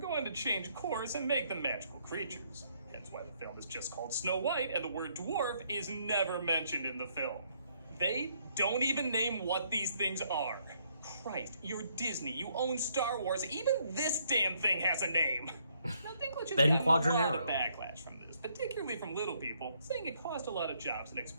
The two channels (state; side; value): inverted; both; correlation -0.70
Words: to change course and make them magical creatures. That's why the film is just called Snow White, and the word dwarf is never mentioned in the film. They don't even name what these things are. Christ, you're Disney, you own Star Wars, even this damn thing has a name! Now, Dinklage has Ben gotten a lot Quadranero. of backlash from this, particularly from little people, saying it cost a lot of jobs and